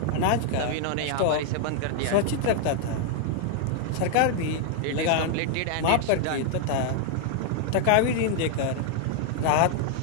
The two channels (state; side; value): different; both; correlation 0.00